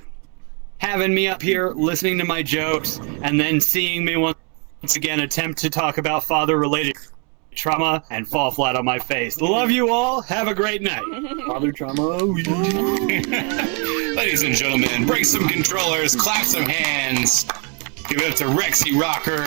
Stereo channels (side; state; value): left; quieter; 36.3 dB